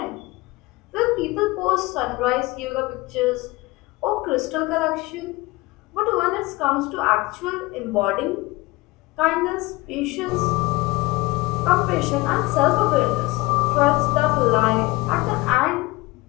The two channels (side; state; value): right; quieter; 21.8 dB